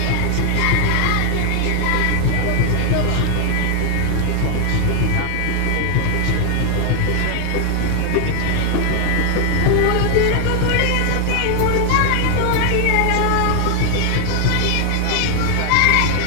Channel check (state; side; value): different; both; correlation 0.01